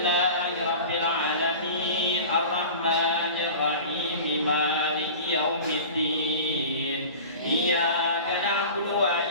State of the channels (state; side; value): inverted; both; correlation -0.37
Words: alamin arrahmanir rahim maliki yaumiddin. Iyyaka na'budu wa